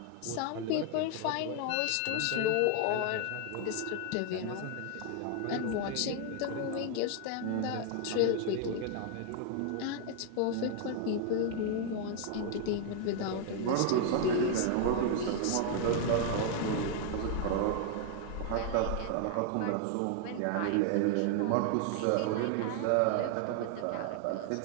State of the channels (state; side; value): different; both; correlation 0.00